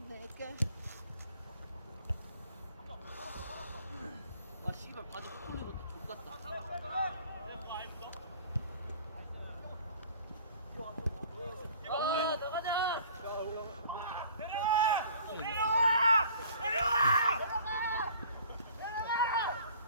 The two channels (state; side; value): inverted; both; correlation -0.50